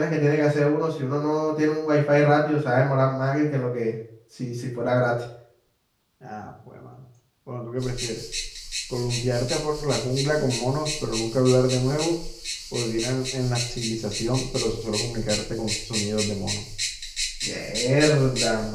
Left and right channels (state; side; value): identical; both; correlation 1.00